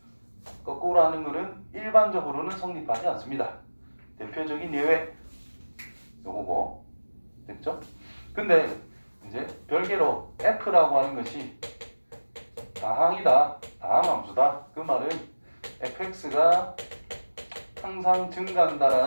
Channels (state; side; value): inverted; both; correlation -1.00